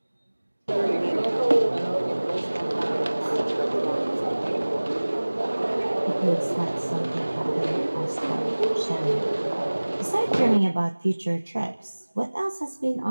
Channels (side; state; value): both; inverted; correlation -1.00